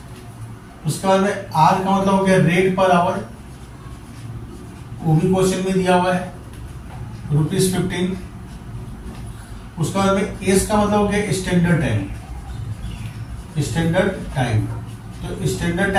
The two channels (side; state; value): both; identical; correlation 1.00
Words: उसके बाद में R का मतलब हो गया रेट पर आवर, वो भी क्वेश्चन में दिया हुआ है ₹15। उसके बाद में एस का मतलब हो गया स्टैंडर्ड टाइम, स्टैंडर्ड टाइम। तो स्टैंडर्ड